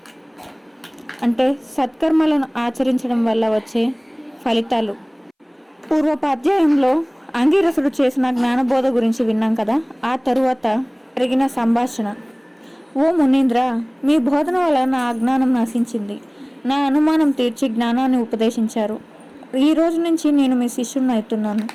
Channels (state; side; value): identical; both; correlation 1.00